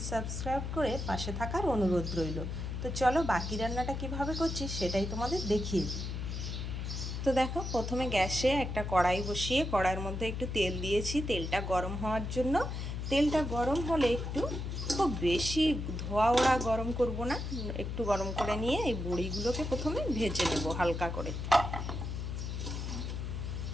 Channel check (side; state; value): left; noise; hum, 4 dB below the sound